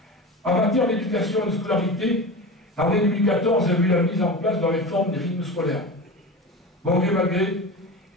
En matière d'éducation et de scolarité, l'année 2014 a vu la mise en place de la réforme des rythmes scolaires. Bon gré mal gré,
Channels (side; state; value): both; normal; correlation 0.28